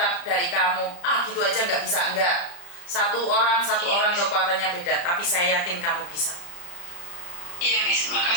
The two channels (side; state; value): right; late; 34 ms